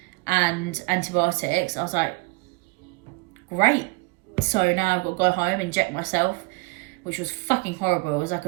and antibiotics. I was like, great. So now I've got to go home, inject myself, which was fucking horrible. It was like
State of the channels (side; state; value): left; quieter; 26.6 dB